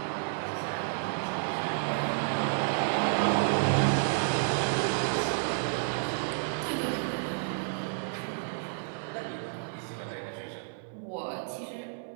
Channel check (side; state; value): left; silent; 57 dB below the other